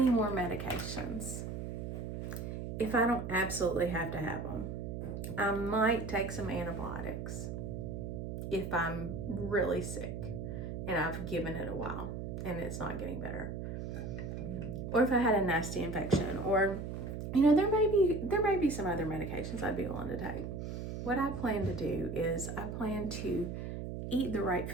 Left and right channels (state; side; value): noise; right; hum, 5 dB below the sound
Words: more medications if I don't absolutely have to have them. I might take some antibiotics if I'm really sick and I've given it a while and it's not getting better. Or if I had a nasty infection, or, you know, there may be some other medications I'd be willing to take. What I plan to do is I plan to eat the right